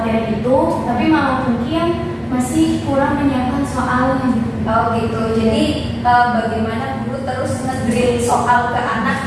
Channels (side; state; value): both; identical; correlation 1.00